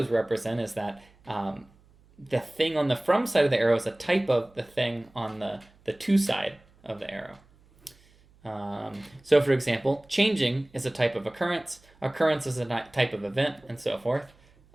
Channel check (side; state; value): right; noise; hum, 30 dB below the sound